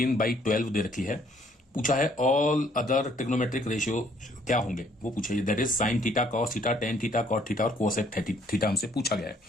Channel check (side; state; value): both; normal; correlation 0.64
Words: दे रखी है। पूछा है ऑल अदर ट्रिग्नोमेट्रिक रेशियो क्या होंगे, वो पूछे that is sine theta, cos theta, tan theta, cot theta और कोसेक थीटा हमसे पूछा गया है।